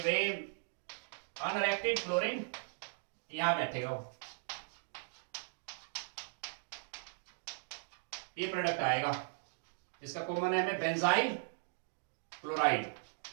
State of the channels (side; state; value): left; silent; digital silence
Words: अनरिएक्टेड क्लोरीन यहां बैठेगा वो, ये प्रोडक्ट आएगा, इसका कॉमन नेम है बेंजाइल क्लोराइड।